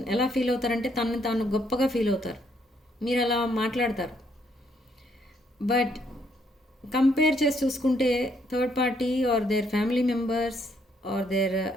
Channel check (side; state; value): both; normal; correlation 0.71